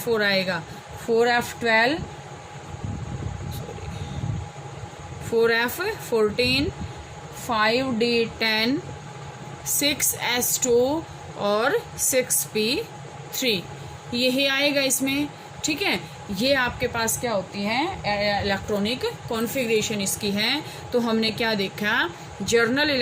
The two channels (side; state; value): both; identical; correlation 1.00